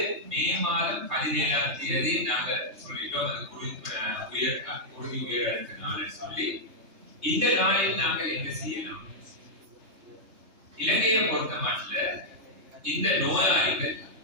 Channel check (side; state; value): left; late; 3.3 ms